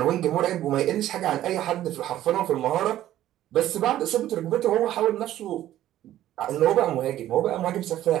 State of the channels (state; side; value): quieter; left; 13.1 dB